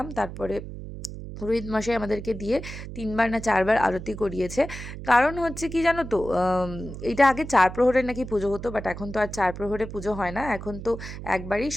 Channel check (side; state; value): right; noise; hum, 10 dB below the sound